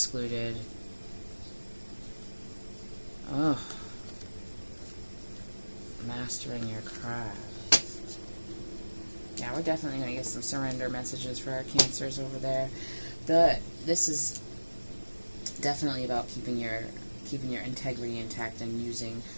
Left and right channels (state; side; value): inverted; both; correlation -1.00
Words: Mastering your craft. Yeah, we're definitely going to get some surrender messages for our Cancers over there. But this is definitely about keeping your integrity intact and using